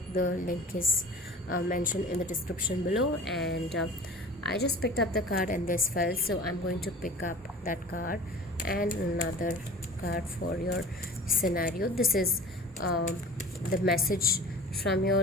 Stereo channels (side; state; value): both; normal; correlation 0.41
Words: the link is mentioned in the description below. And I just picked up the card and this fell, so I'm going to pick up that card and another card for your scenario. This is the message from your